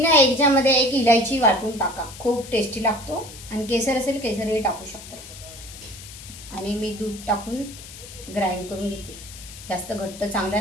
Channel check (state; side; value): noise; left; hiss, 15 dB below the sound